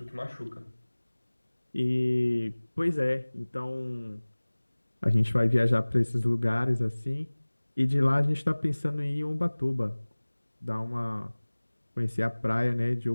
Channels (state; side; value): inverted; both; correlation -1.00